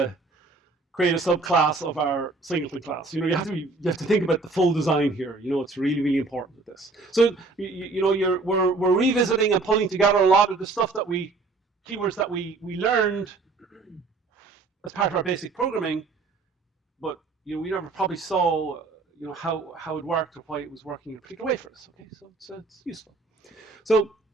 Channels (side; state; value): left; quieter; 3.7 dB